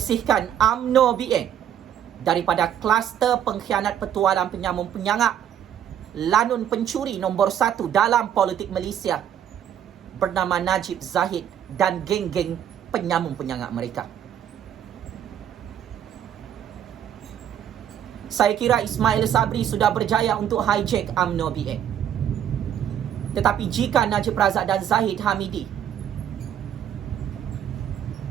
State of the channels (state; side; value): quieter; left; 9.8 dB